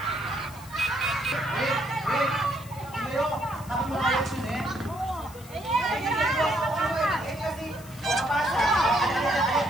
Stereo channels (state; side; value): noise; left; hiss, 20 dB below the sound